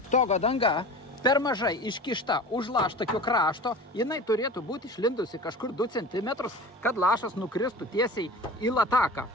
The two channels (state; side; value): normal; both; correlation 0.36